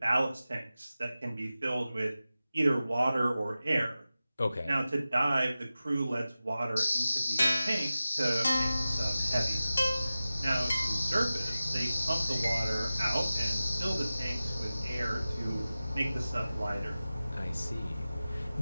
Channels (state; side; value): inverted; both; correlation -0.96